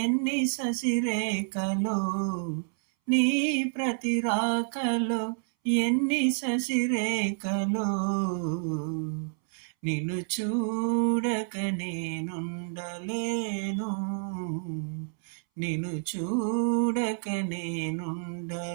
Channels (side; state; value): left; silent; 59 dB below the other